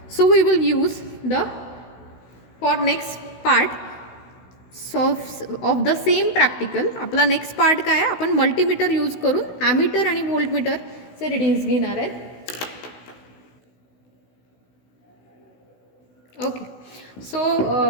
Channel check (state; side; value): late; right; 16 ms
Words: So we will use the, for next part of the same practical, आपला next part काय आहे, आपण multimeter use करून ammeter आणि व्होल्टमीटरचे readings घेणार आहेत. Okay, so